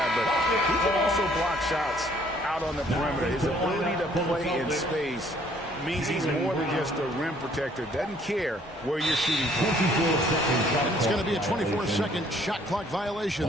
but he can also block shots out on the perimeter. His ability to play in space means he's more than just a rim protector. Doesn't care where you're shooting from. And it's going to be a 24-second shot clock violation.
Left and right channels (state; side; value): normal; both; correlation 0.61